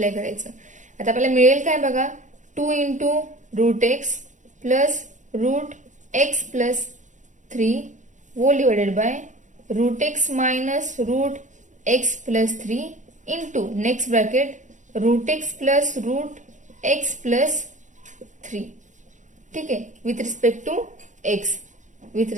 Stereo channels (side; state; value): left; late; 0.36 ms